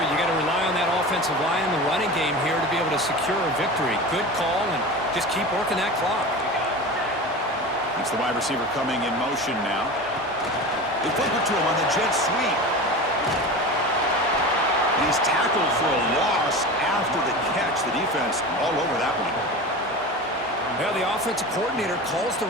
got to rely on that offensive line in the running game here to be able to secure a victory. Good call, and just keep working that clock. It's the wide receiver coming in motion now. They flip it to him on the jet sweep. And he's tackled for a loss after the catch. The defense all over that one. Yeah, the offensive coordinator calls the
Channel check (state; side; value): normal; both; correlation 0.31